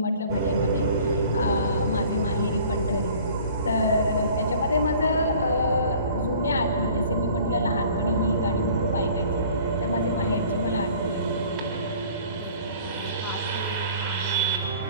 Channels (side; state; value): both; inverted; correlation -0.49